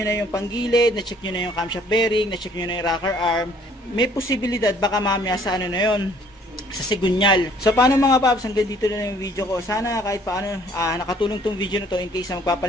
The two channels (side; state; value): both; normal; correlation 0.59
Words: na yung panggilid, na-check nyo na yung camshaft bearing, na-check nyo na yung rocker arm, may posibilidad baka mamaya sa na yun, sa sigunyal. So paano mga paps, hanggang dito na yung video ko. Sana kahit paano nakatulong tong video na to in case na